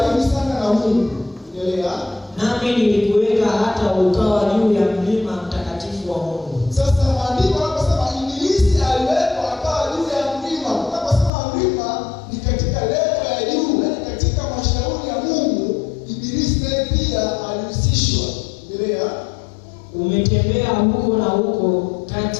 sana na Mungu. Mungu. Endelea. Nami nilikuweka hata ukawa juu ya mlima mtakatifu wa Mungu. Sasa maandiko yanaposema ibilisi aliwekwa akawa juu ya mlima. Unaposema mlima ni katika level ya juu, yaani katika mashauri ya Mungu, ibilisi naye pia alihusishwa. Endelea. Umetembea huko na huko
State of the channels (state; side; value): drops out; right; at 11.3 s